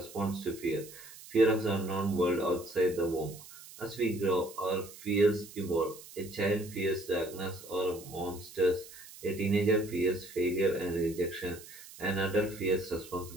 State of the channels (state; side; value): noise; right; hiss, 17 dB below the sound